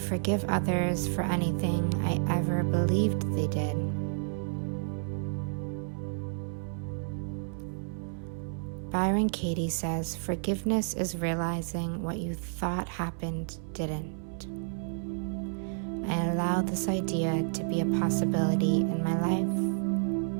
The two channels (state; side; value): silent; left; 57 dB below the other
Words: others for anything I ever believed they did. Byron Katie says, forgiveness is realizing what you thought happened didn't. I allow this idea to be a possibility in my life.